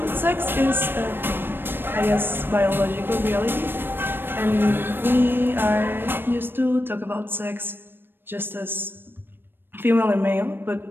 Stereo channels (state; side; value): late; left; 0.098 ms